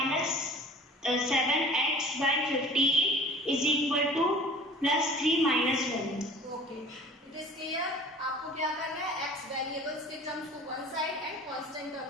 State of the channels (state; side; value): normal; both; correlation 0.46